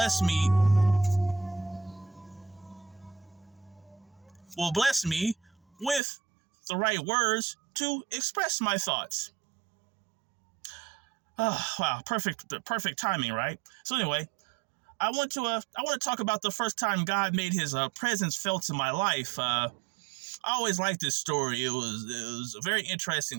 me with the right words to express my thoughts. Oh, wow, perfect timing, right? So anyway, I want to talk about the first time God made His presence felt in my life. I always liked this story. It was a very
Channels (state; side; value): drops out; left; at 6.0 s